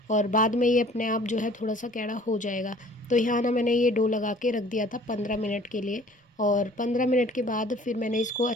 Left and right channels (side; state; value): both; normal; correlation 0.52